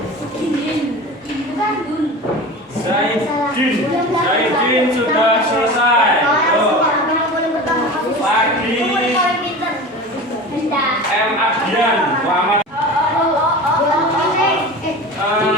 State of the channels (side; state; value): both; normal; correlation 0.33